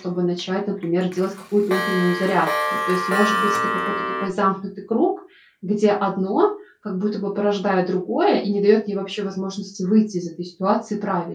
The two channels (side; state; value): both; identical; correlation 1.00